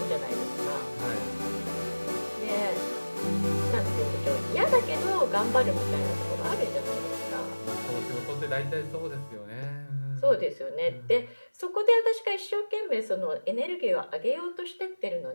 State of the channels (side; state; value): both; inverted; correlation -1.00